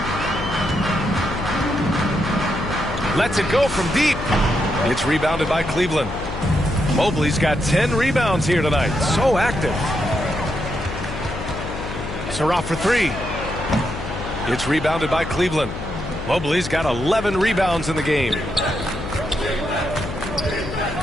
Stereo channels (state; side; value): noise; left; hum, 8 dB below the sound